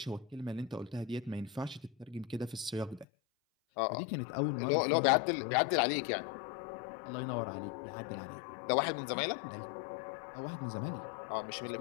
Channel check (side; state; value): right; drops out; at 3.1 s